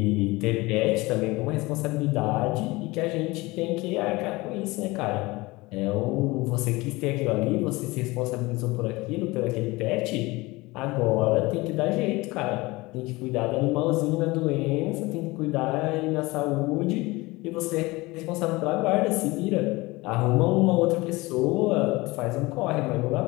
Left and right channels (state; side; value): quieter; right; 22.0 dB